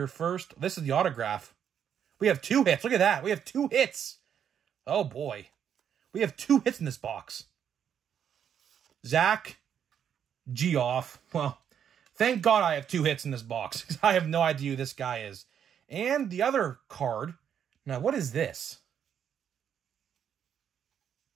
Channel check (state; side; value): quieter; left; 8.6 dB